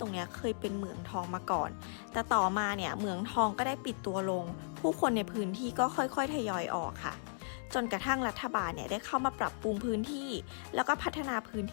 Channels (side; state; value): right; silent; digital silence